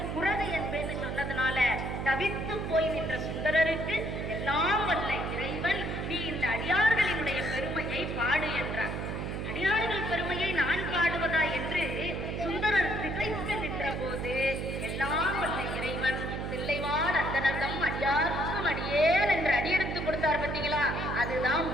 குரது என்பேன்னு சொன்னதுனால தவித்து போய் நின்ற சுந்தரருக்கு எல்லாம் வல்ல இறைவன் நீ இந்த அடியார்களினுடைய பெருமையை பாடு என்றார். அடியார்கள் பெருமையை நான் பாடுவதா என்று சுந்தரர் திகைத்து நின்ற போது எல்லாம் வல்ல இறைவன் தில்லைவாழ் அந்தனர்தம் அடியார்க்கும் அடியேன் என்று அடியெடுத்து கொடுத்தார். பார்த்தீங்களா? அதுதான்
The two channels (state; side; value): noise; right; hum, 4 dB below the sound